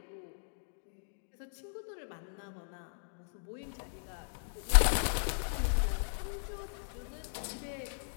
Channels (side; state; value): right; silent; digital silence